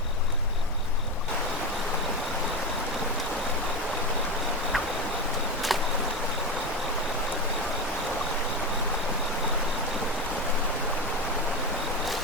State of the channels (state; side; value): normal; both; correlation 0.19